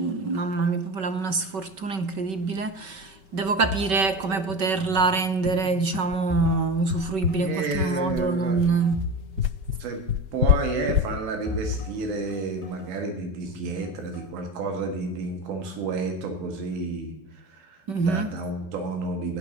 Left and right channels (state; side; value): late; left; 5.2 ms